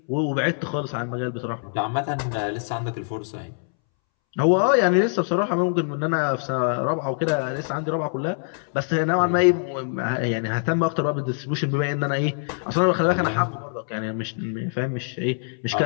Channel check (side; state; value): right; silent; 63 dB below the other